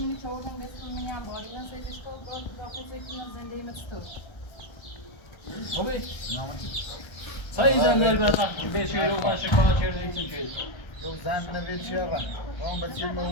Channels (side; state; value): right; late; 1.3 ms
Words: چودن بسم منی انباری من سیدش کن باید داخل سیدش زندگی مستور خوبی سایی زندگی برات بیشی رو باشه کار چیزی چیزی یو زن نوید چی آقا اون بچه